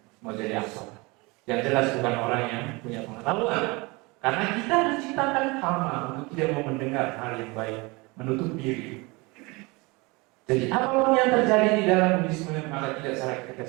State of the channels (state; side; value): quieter; left; 25.5 dB